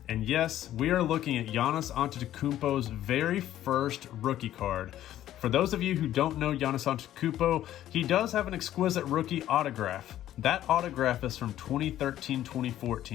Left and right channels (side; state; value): right; quieter; 12.6 dB